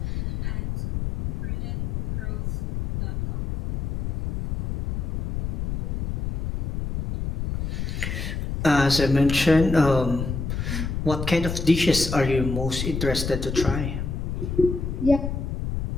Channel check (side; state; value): left; noise; rumble, 2 dB below the sound